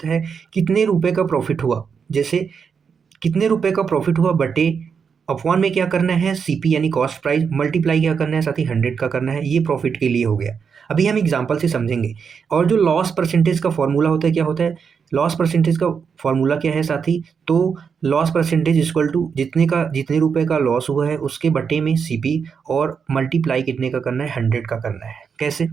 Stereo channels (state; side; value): quieter; left; 6.3 dB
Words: है कितने रुपए का प्रॉफिट हुआ। जैसे कितने रुपए का प्रॉफिट हुआ बटे अपॉन में क्या करना है? सीपी यानी कॉस्ट प्राइस, मल्टीप्लाई क्या करना है साथी? 100 का करना है। ये प्रॉफिट के लिए हो गया। अभी हम एग्जांपल से समझेंगे। और जो लॉस परसेंटेज का फॉर्मूला होता है, क्या होता है? लॉस परसेंटेज का फॉर्मूला क्या है साथी? तो लॉस परसेंटेज इक्वल टू जितने रुपए का लॉस हुआ है उसके बटे में सीपी, और मल्टीप्लाई कितने का करना है? 100 का करना है। कैसे?